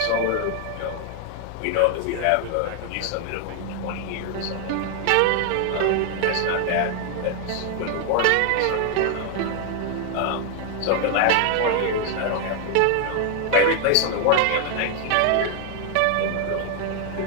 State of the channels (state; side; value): different; both; correlation 0.01